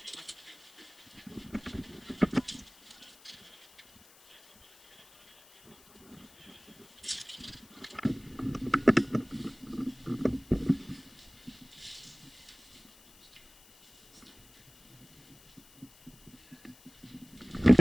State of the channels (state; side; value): noise; left; hiss, 25 dB below the sound